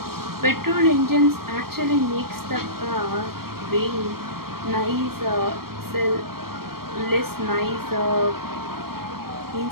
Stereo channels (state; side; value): late; left; 0.93 ms